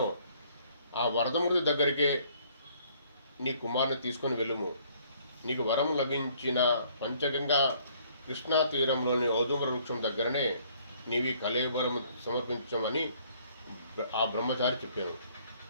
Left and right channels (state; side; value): inverted; both; correlation -0.62